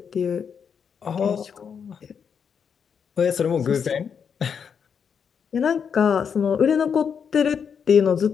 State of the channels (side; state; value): right; quieter; 6.9 dB